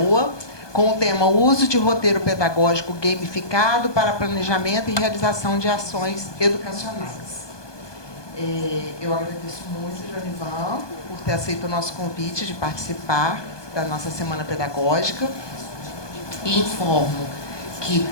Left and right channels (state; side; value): late; right; 1.2 ms